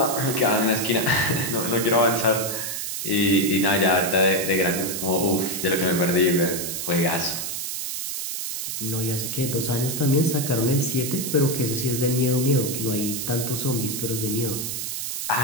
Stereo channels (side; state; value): right; noise; hiss, 4 dB below the sound